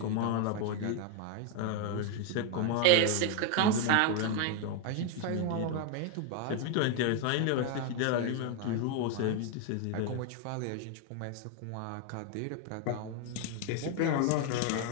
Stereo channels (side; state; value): both; different; correlation 0.01